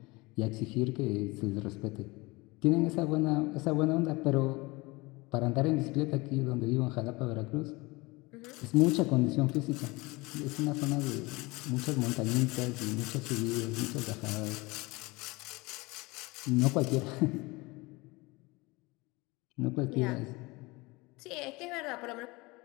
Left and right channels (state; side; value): quieter; right; 23.7 dB